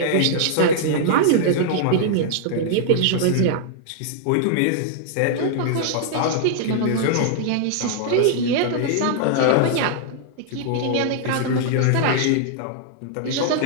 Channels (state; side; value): different; both; correlation -0.01